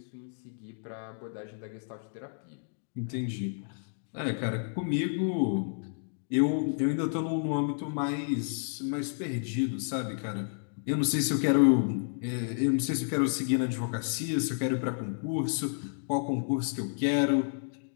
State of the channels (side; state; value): right; silent; digital silence